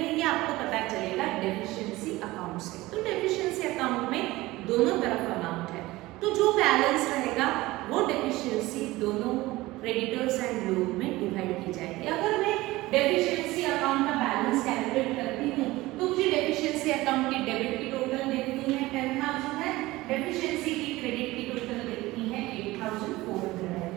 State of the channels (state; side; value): quieter; left; 19.0 dB